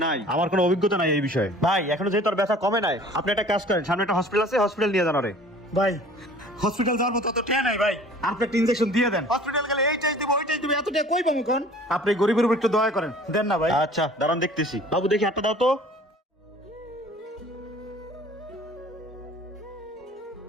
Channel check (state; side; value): normal; both; correlation 0.48